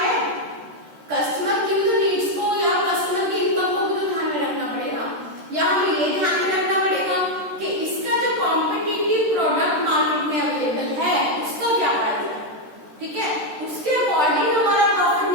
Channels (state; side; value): late; left; 13 ms